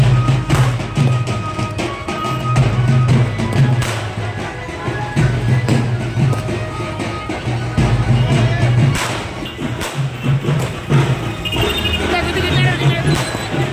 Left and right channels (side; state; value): both; identical; correlation 1.00